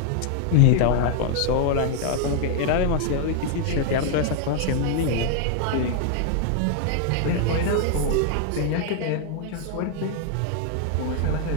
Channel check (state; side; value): different; both; correlation 0.00